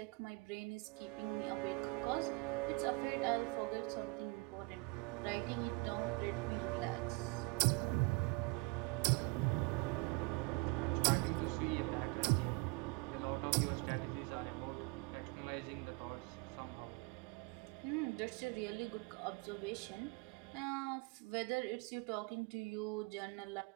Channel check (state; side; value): quieter; left; 27.6 dB